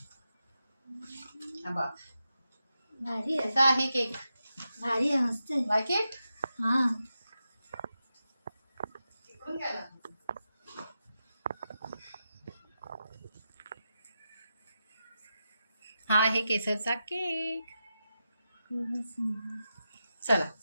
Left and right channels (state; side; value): inverted; both; correlation -0.89